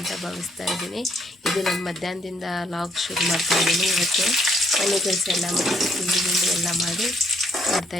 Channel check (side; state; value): both; normal; correlation 0.68